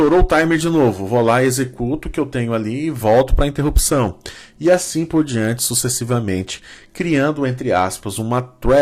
o timer de novo, vou lá, executo o que eu tenho ali e volto para a interrupção. E assim por diante, sucessivamente, criando, entre aspas, uma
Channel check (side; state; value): both; identical; correlation 1.00